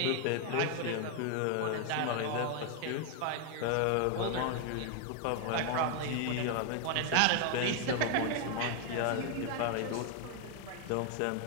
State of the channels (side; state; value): both; different; correlation 0.00